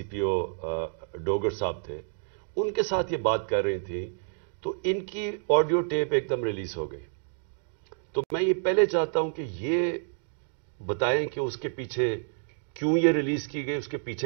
پی او ڈوگر صاحب تھے، ان کے ساتھ یہ بات کر رہی تھی، تو ان کی آڈیو ٹیپ ایک دم ریلیز ہو گئی. تو میں یہ پہلے چاہتا ہوں کہ یہ بتائیں کہ اس کے پیچھے کیوں یہ ریلیز کی گئی، اس کے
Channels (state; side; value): silent; left; digital silence